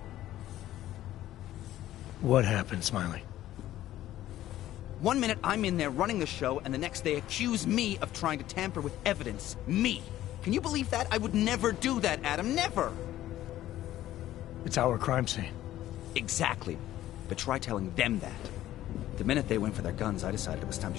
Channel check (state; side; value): quieter; right; 13.8 dB